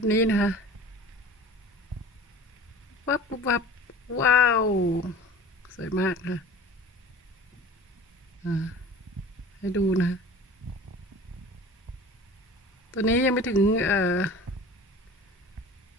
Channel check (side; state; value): both; normal; correlation 0.41